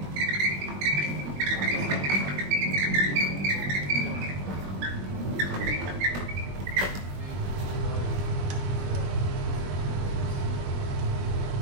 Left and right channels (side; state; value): left; late; 21 ms